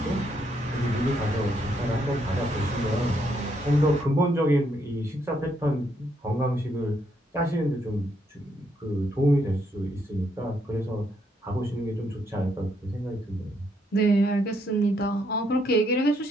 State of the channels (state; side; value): normal; both; correlation 0.74